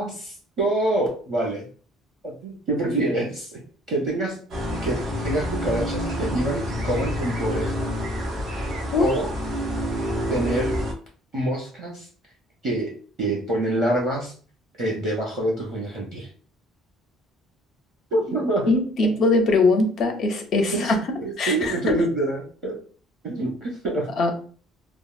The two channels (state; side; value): normal; both; correlation 0.55